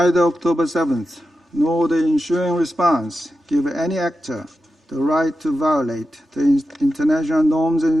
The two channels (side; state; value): both; normal; correlation 0.90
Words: October 7th nor the ensuing response give any actor the right to violate the international norms and